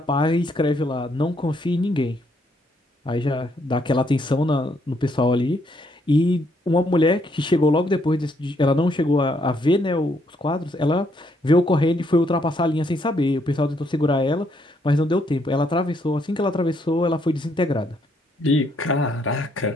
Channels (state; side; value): normal; both; correlation 0.72